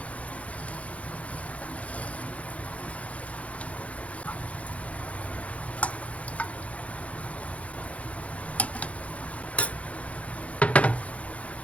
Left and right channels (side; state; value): right; late; 0.065 ms